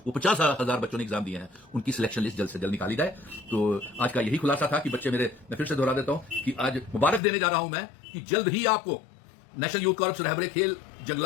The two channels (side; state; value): right; drops out; at 7.2 s